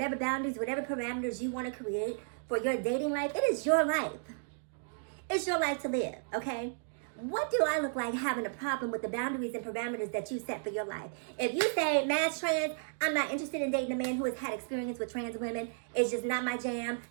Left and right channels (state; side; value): silent; left; digital silence